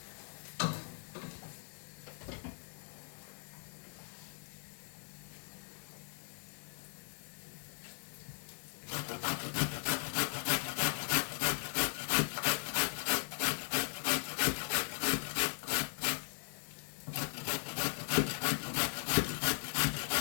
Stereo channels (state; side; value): silent; right; digital silence